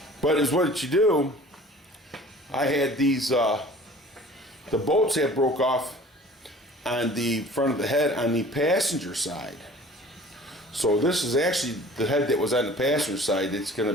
But it's what you do. I had these, the bolts had broke off on the front of the head on the passenger side. So this is actually the head that was on the passenger side. It's going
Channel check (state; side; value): normal; both; correlation 0.46